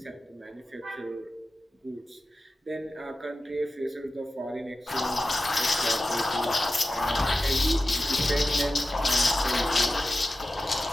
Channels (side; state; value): both; normal; correlation 0.94